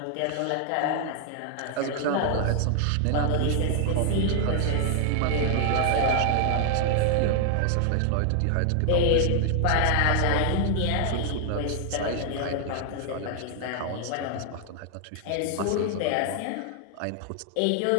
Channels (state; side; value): different; both; correlation 0.00